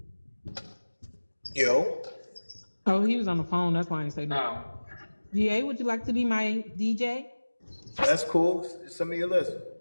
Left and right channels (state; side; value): inverted; both; correlation -1.00